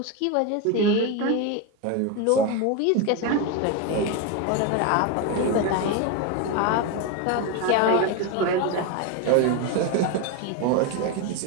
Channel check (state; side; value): different; both; correlation 0.03